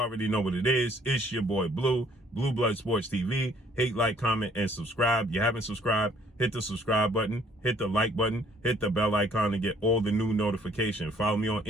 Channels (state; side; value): normal; both; correlation 0.61